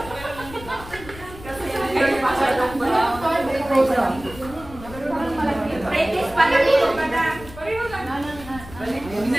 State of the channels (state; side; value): noise; left; rumble, 16 dB below the sound